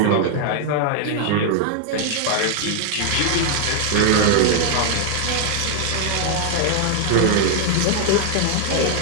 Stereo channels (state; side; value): different; both; correlation 0.00